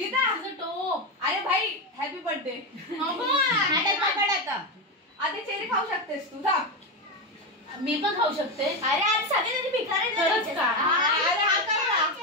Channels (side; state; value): both; normal; correlation 0.12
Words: अरे भाई हॅपी बर्थडे. आता चेरी खाऊ शकतेस तू. मी पण खाऊ शकते. अरे आज सगळे भिकारी.